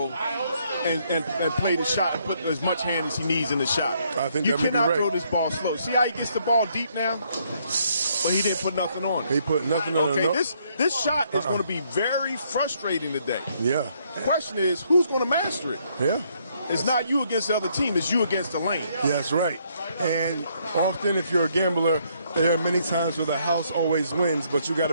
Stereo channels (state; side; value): inverted; both; correlation -0.70